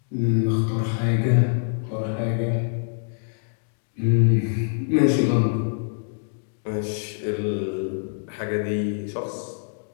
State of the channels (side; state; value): right; silent; digital silence